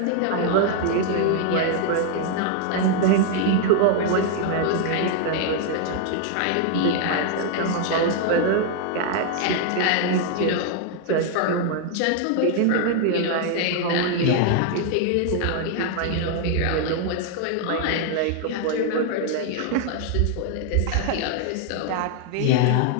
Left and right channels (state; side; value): different; both; correlation 0.00